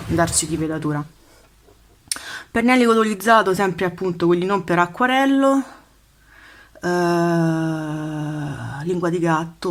darci di velatura. Pennelli colorizzato sempre appunto quelli non per acquarello, lingua di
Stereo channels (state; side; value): identical; both; correlation 1.00